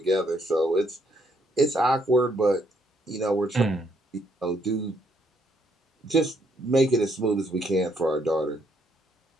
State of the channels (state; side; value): normal; both; correlation 0.70